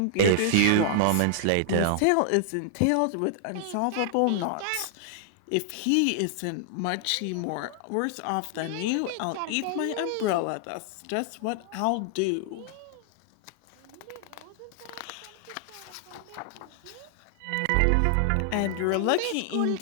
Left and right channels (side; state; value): both; different; correlation -0.01